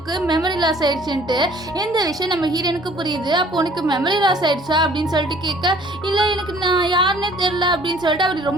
மெமரி லாஸ் ஆயிடுச்சுன்ட்டு. எந்த விஷயம் நம்ம ஹீரோனுக்கு புரியுது. அப்போ உனக்கு மெமரி லாஸ் ஆயிடுச்சா அப்படின்னு சொல்லிட்டு கேட்க, இல்லை எனக்கு நான் யாருன்னே தெரியல அப்படின்னு சொல்லிட்டு அவர்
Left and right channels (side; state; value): both; normal; correlation 0.55